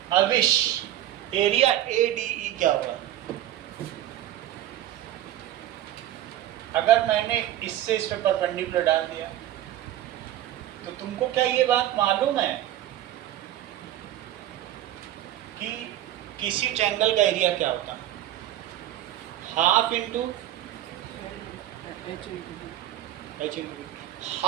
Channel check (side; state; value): left; quieter; 12.9 dB